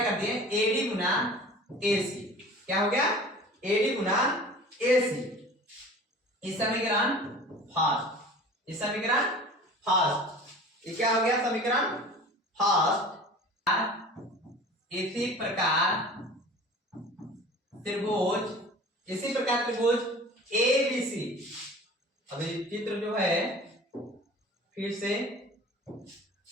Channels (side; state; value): both; normal; correlation 0.41